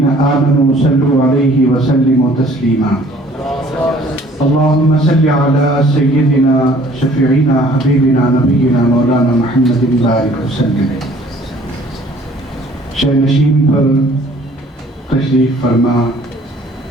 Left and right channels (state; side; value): normal; both; correlation 0.55